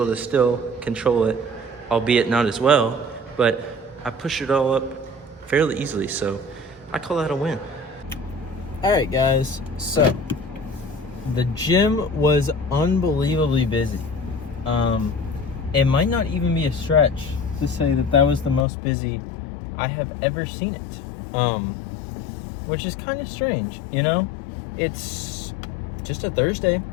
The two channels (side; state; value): right; drops out; at 18.7 s